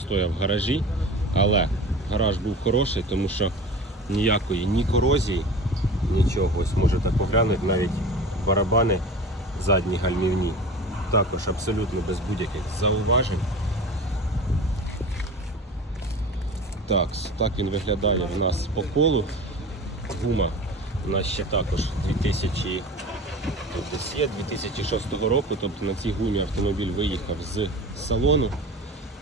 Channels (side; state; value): both; normal; correlation 0.36